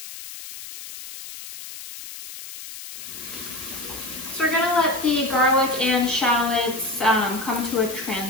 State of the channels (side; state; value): left; noise; hiss, 12 dB below the sound